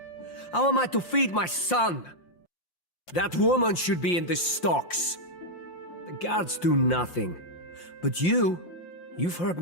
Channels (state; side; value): late; right; 5.7 ms